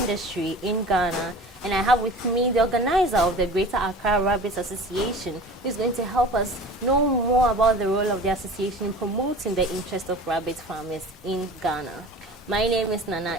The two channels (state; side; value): normal; both; correlation 0.39